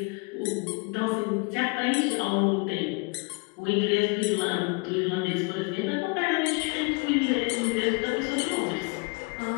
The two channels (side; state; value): right; quieter; 31.1 dB